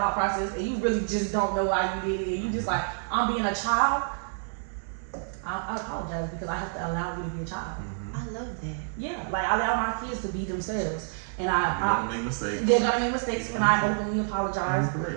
process and you really just don't know why you did it, and you just like, I'm being a child, I apologize because I have to allow you to be a child. I love that. Yeah, like I allow my kids to be themselves, and they're gonna make mistakes. They're gonna make mistakes, and I openly apologize.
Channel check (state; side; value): silent; left; 59 dB below the other